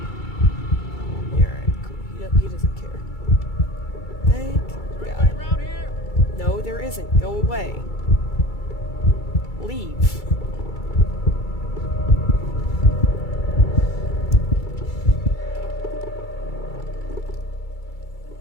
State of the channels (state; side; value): late; right; 2.3 ms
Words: Yeah, alright, cool. He doesn't care. Thank God. No, there isn't. Go away. Leave.